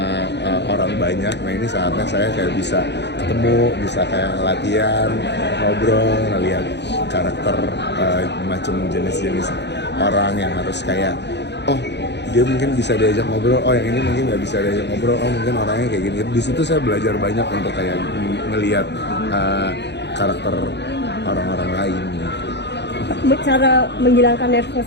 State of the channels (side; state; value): right; late; 0.50 ms